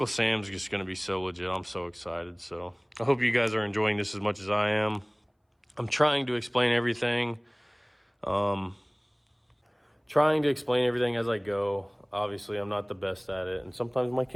Sam's just going to be so legit. I'm so excited. So I hope you guys are enjoying this as much as I am. I'm trying to explain everything. As I go. Obviously, I'm not the best at it, and sometimes my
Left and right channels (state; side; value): identical; both; correlation 1.00